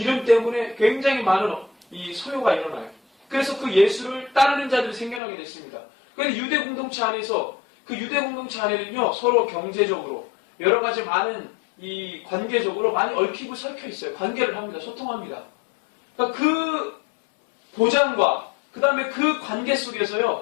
때문에 굉장히 많은 이 소요가 일어나요. 그래서 그 예수를 따르는 자들이 생겨나게 됐습니다. 그런데 유대 공동체 안에서, 그 유대 공동체 안에는요, 서로 경제적으로, 여러 가지 많은 이 관계적으로 많이 얽히고 설켜 있어요. 관계를 합니다. 소통합니다. 그러니까 그 보장과 그 다음에 그 관계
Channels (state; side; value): drops out; right; at 5.2 s